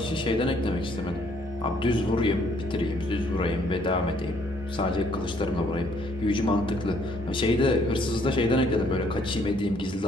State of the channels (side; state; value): right; noise; rumble, 24 dB below the sound